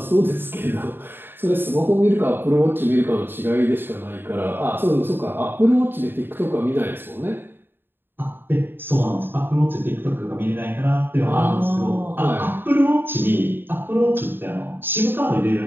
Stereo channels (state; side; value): late; left; 0.099 ms